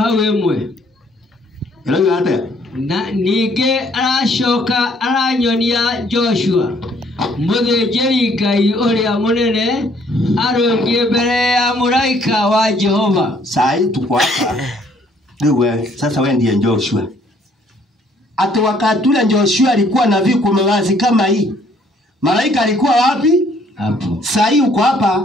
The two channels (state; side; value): normal; both; correlation 0.63